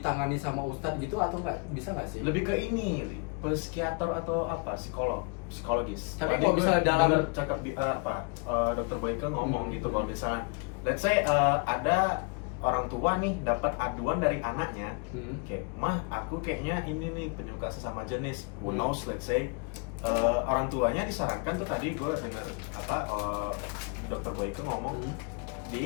sama ustadz gitu atau nggak? Bisa nggak sih? Lebih ke ini, psikiater atau apa, psikologis. Tapi Tadi kalau gue misalnya dalam- dengar cakap Dr. Boyke ngomong gitu kalau misalnya let's say ada orang tua nih dapat aduan dari anaknya kayak, mah aku kayaknya ini nih penyuka sesama jenis, who knows, let's say orang tuanya disarankan tuh, tadi gue denger Dr. Boyke ngomong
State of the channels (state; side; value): quieter; right; 32.9 dB